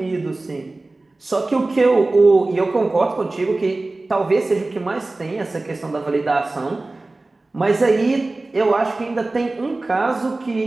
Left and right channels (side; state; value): left; quieter; 3.1 dB